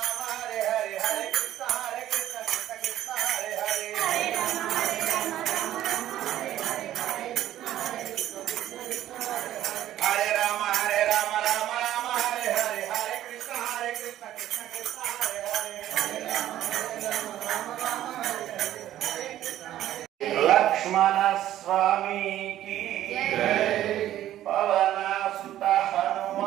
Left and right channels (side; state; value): left; quieter; 12.9 dB